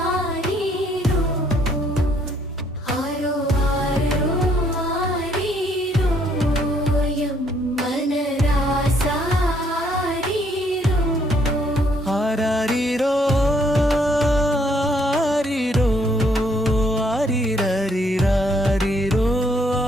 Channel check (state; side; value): normal; both; correlation 0.68